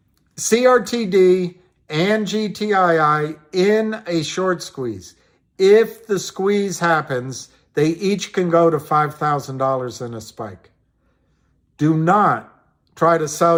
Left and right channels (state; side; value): identical; both; correlation 1.00